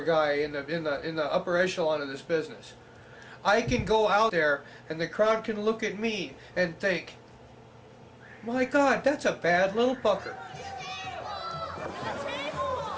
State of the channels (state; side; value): identical; both; correlation 1.00